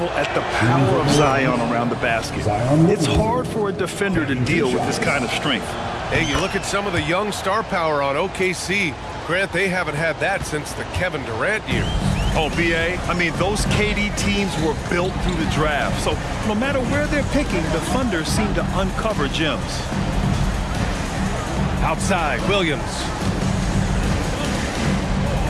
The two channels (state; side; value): identical; both; correlation 1.00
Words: at the power of Zion around the basket. It's hard for a defender to deal with this kind of strength. Hey, you look at some of the young star power on OKC. Grant, they haven't had that since the Kevin Durant years. Oh, B.A., I mean, those KD teams were built through the draft. So no matter where they're picking, the Thunder seem to uncover gems. Outside, Williams.